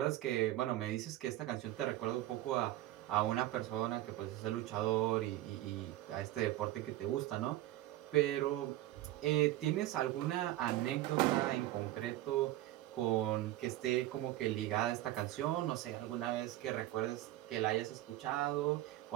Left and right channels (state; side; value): quieter; left; 15.4 dB